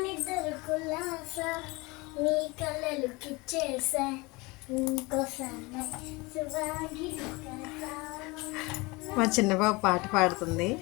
మా చిన్నబాబు పాట పాడుతుంది.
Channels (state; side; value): quieter; right; 24.6 dB